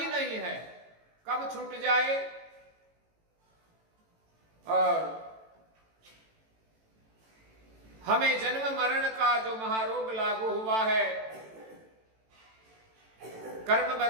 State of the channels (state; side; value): late; left; 18 ms